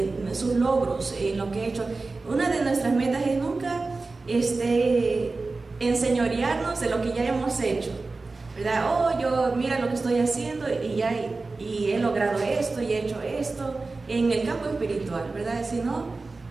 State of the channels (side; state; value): left; quieter; 3.7 dB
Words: sus logros, en lo que he hecho. Una de nuestras metas es nunca enseñorearnos de lo que ya hemos hecho, ¿verdad? Oh, yo mira lo que estoy haciendo y he logrado esto y he hecho esto en el campo espiritual, ¿verdad? Si no,